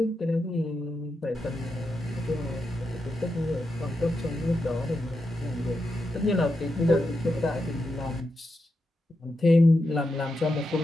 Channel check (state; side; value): normal; both; correlation 0.86